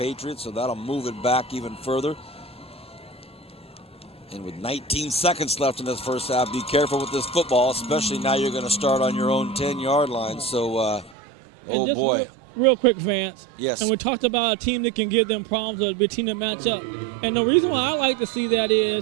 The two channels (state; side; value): drops out; left; at 11.2 s